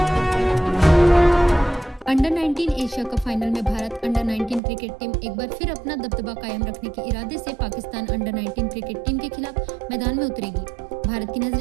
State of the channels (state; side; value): drops out; left; at 4.6 s